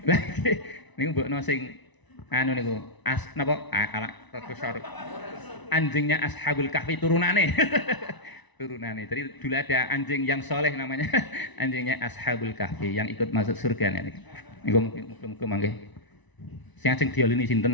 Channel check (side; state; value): right; late; 1.0 ms